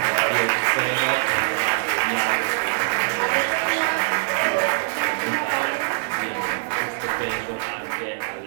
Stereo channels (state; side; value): silent; left; digital silence